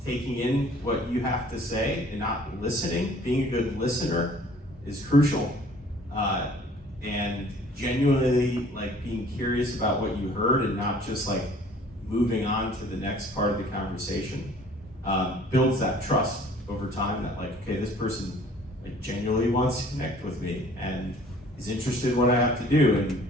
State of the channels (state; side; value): normal; both; correlation 0.53